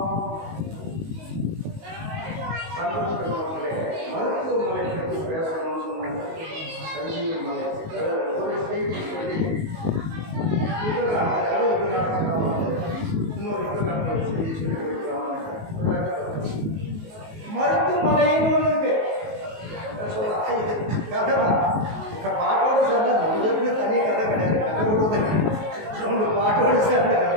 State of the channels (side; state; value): left; late; 19 ms